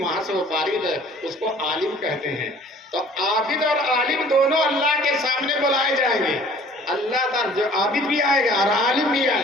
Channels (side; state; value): both; normal; correlation 0.51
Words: سے وہ فارغ ہے، اس کو عالم کہتے ہیں۔ تو عابد اور عالم دونوں اللہ کے سامنے بلائے جائیں گے، اللہ تعالیٰ جو عابد بھی آئے گا اور عالم بھی